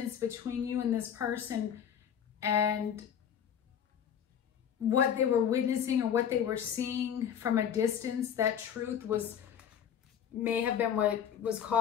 between you and this person, and what they were witnessing or what they were seeing from a distance, that truth may have been what was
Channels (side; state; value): right; quieter; 8.7 dB